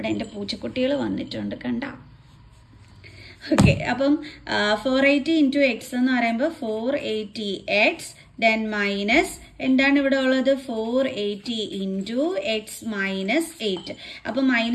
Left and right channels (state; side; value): identical; both; correlation 1.00